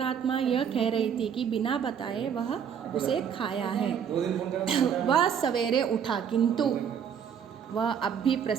यह कह रही थी कि बिना बताए वह उसे खाया है। वह सवेरे उठा, किंतु वह अब भी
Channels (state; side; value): quieter; left; 7.9 dB